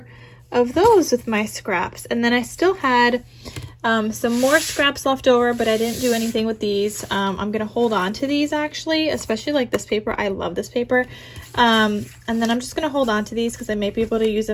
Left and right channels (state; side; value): identical; both; correlation 1.00